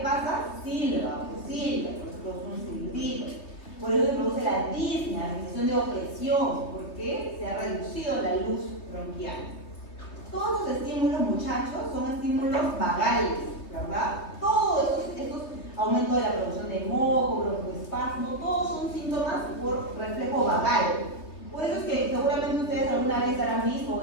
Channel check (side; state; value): right; late; 3.1 ms